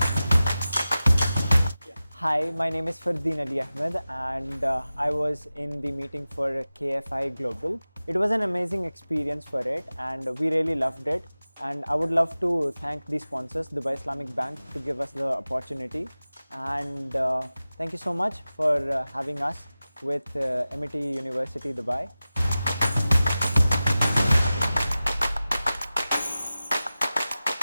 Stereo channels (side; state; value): both; inverted; correlation -0.96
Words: Hi, my name is Fardeen Ali Ahmed, and I was in the meeting for KFI Global. It was an amazing experience for it, and we really loved it. And I would love to thank the sponsors, Dubai Islamic Bank, to give us the opportunity. And thank you so much for having us with Amity University, Dubai.